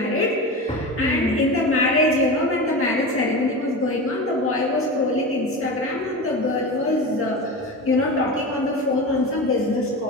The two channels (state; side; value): normal; both; correlation 0.26